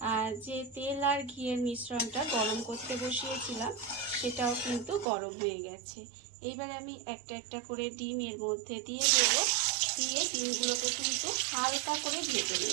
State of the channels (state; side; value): drops out; left; at 5.1 s